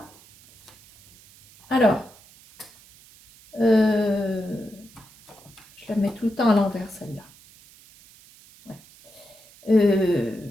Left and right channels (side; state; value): right; noise; hiss, 25 dB below the sound